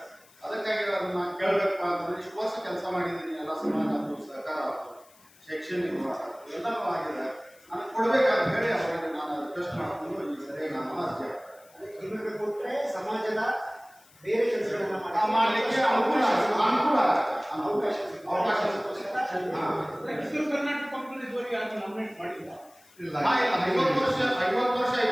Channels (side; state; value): left; noise; hiss, 27 dB below the sound